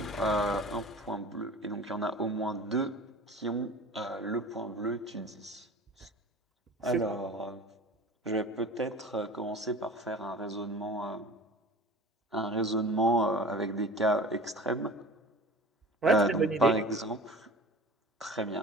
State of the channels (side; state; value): both; normal; correlation 0.40